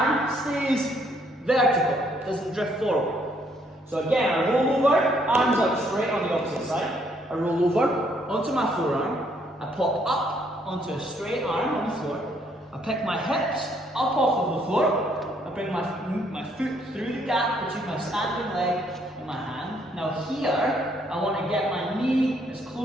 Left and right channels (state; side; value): normal; both; correlation 0.69